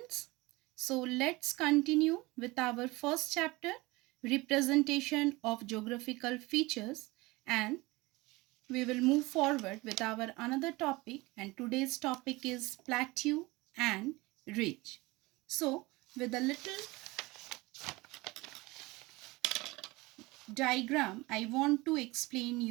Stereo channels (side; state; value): left; quieter; 22.2 dB